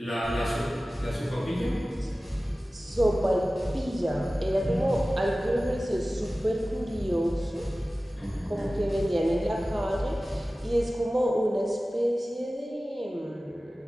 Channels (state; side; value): normal; both; correlation 0.96